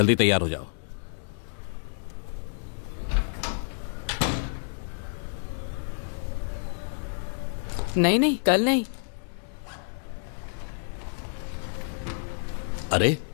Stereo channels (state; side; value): silent; right; digital silence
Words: तैयार हो जाओ। नहीं नहीं, कल नहीं। अरे